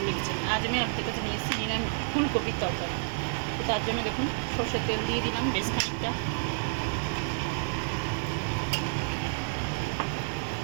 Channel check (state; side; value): silent; left; 58 dB below the other